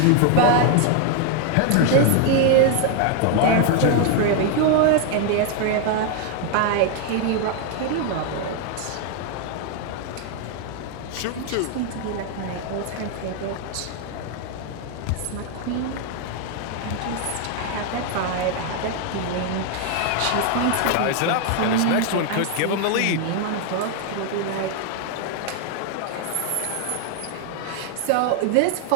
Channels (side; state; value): both; different; correlation 0.00